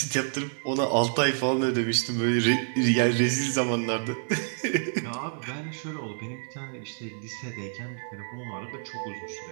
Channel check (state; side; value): silent; left; digital silence